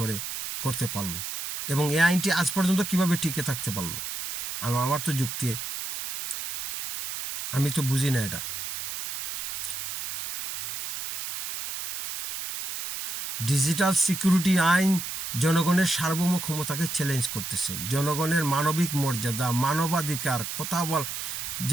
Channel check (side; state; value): right; noise; hiss, 6 dB below the sound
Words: করতে পারলো, এবং এই আইনটি আজ পর্যন্ত কিভাবে টিকে থাকতে পারলো? আমার তো যুক্তি, আমি তো বুঝি না এটা। ডিজিটাল সিকিউরিটি আইন জনগণের সার্বভৌম ক্ষমতাকে চ্যালেঞ্জ করতেছে, জনগণের মানবিক মর্যাদা, মানবাধিকার কথা